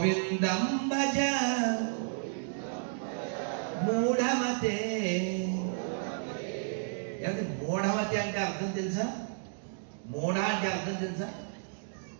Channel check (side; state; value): left; silent; digital silence